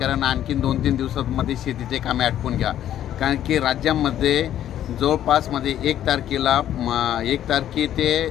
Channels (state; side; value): quieter; right; 11.4 dB